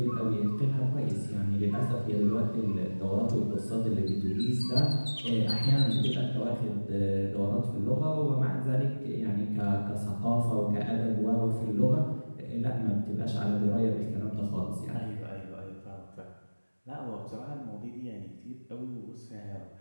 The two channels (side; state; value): both; inverted; correlation -1.00